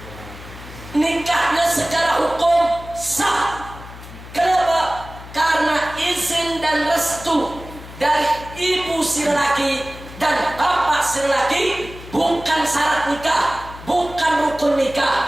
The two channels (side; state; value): left; noise; hum, 15 dB below the sound